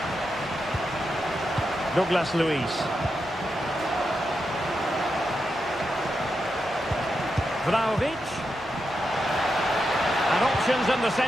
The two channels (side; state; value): both; normal; correlation 0.86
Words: Douglas Luiz. Vlahovic. And options in the